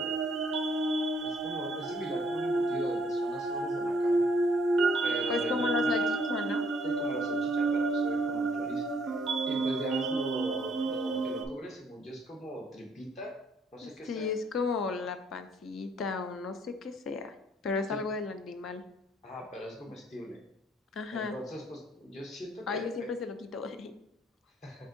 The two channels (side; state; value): both; normal; correlation 0.65